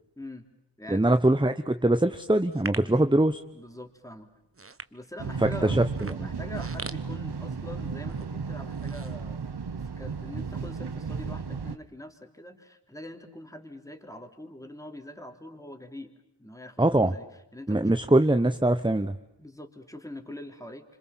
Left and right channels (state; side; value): normal; both; correlation 0.80